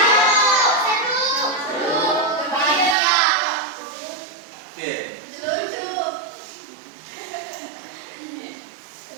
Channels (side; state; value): left; drops out; at 3.0 s